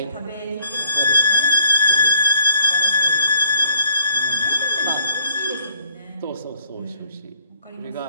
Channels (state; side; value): inverted; both; correlation -0.62